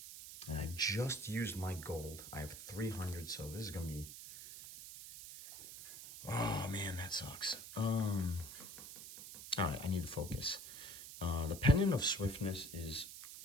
And I just used my gold. I have 300, so this is gonna be, oh man, that sucks. All right, I need to focus. The Pendant of Swiftness is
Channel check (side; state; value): right; noise; hiss, 11 dB below the sound